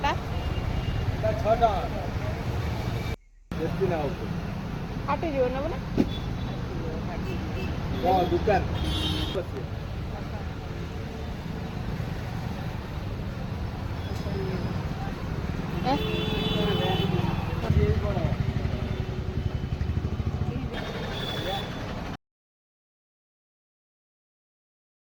এটা 6 টাকা বেশি না হবে ফাটিଯିବ ନା ବୋଲେ দোকান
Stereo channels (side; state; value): both; identical; correlation 1.00